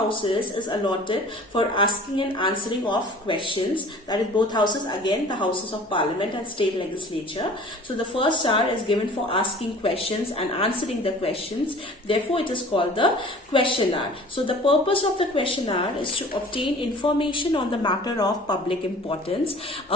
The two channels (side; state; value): both; normal; correlation 0.46